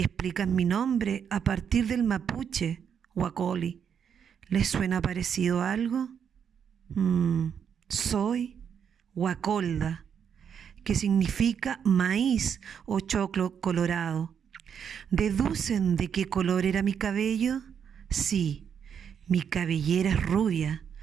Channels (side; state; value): left; quieter; 7.7 dB